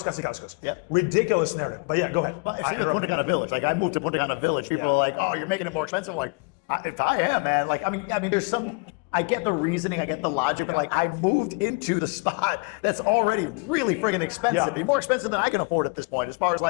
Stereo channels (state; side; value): quieter; right; 32.1 dB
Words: Casicascos. Yep. Ridiculous narrative. But yeah, go ahead. If you're in Punta Cana Village, like I moved to Punta Cana Village, people are like, "Oh, you're making it more expensive." I'm like, if I am, man. Like, I mean, there's some. I get the reasoning, I get the logic. Like, I moved into the spot that's already really friggin' expensive. Yeah. It'd be more expensive than I can afford at this point, as far as